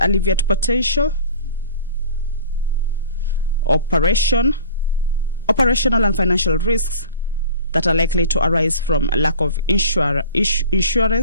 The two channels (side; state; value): both; inverted; correlation -0.42